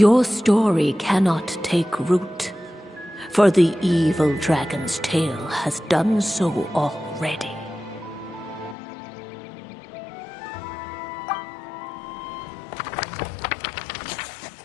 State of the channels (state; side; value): drops out; right; at 8.8 s